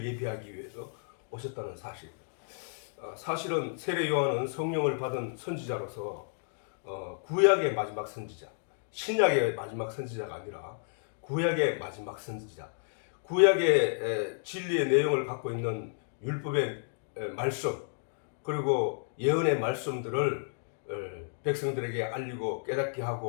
예비하기 위해서 오셨다는 사실입니다. 사실은 세례요한은 성령을 받은 선지자로서 구약의 마지막 선지자, 신약의 마지막 선지자가 아니라 구약의 마지막 선지자, 구약의 진리의 내용을 갖고 있는 율법의 말씀, 그리고 예언의 말씀들을 백성들에게 알리고 깨닫게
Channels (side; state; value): right; silent; digital silence